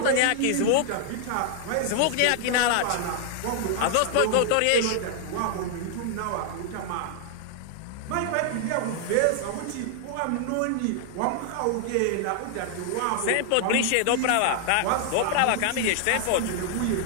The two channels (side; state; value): both; different; correlation 0.00